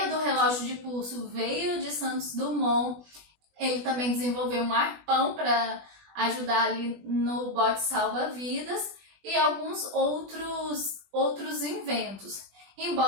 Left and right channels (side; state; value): left; late; 20 ms